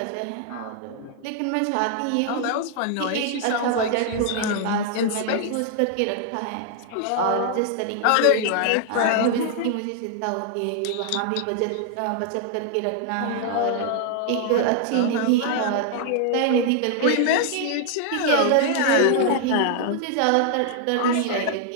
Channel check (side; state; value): both; different; correlation 0.00